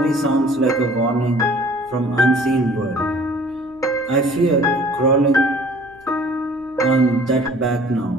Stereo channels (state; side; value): noise; left; hum, 28 dB below the sound